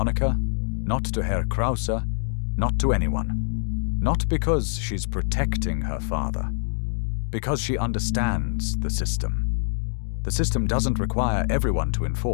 Not to Herr Krause. Not to anyone. Not because she's protecting her father. Because she understands the system. The system doesn't require everyone to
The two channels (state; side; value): silent; right; digital silence